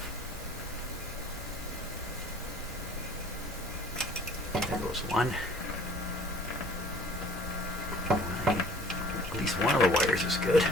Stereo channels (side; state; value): both; normal; correlation 0.51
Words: There goes one. At least one of the wires is good.